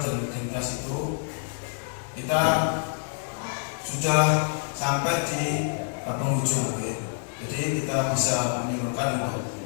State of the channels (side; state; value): right; silent; 60 dB below the other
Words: identitas itu. Kita sudah sampai di penghujung, jadi kita bisa menyimpulkan